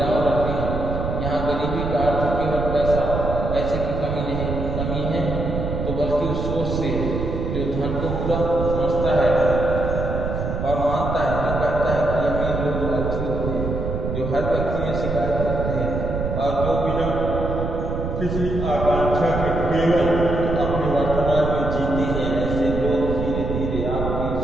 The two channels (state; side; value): noise; right; rumble, 3 dB below the sound